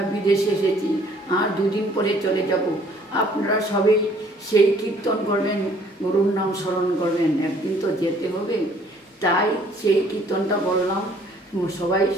বিদেশে এসেছি আর দুদিন পরে চলে যাব। আপনারা সবাই সেই কীর্তন করবেন, গুরুর নাম স্মরণ করবেন, একদিন তো যেতে হবে। তাই সেই কীর্তনটা বললাম, সবাই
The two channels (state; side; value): normal; both; correlation 0.59